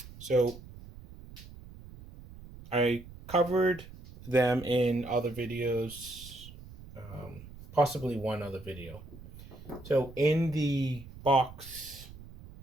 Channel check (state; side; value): noise; right; rumble, 17 dB below the sound